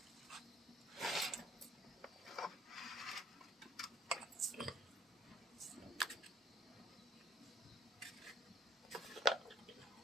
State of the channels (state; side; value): normal; both; correlation 0.55